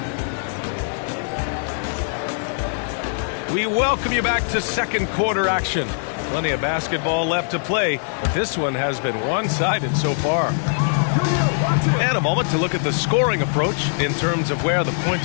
we welcome you back to second quarter action. Plenty of basketball left to play, but this one has been one-sided so far. And a moment to look at the scoring approach in terms of where the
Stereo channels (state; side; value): silent; right; digital silence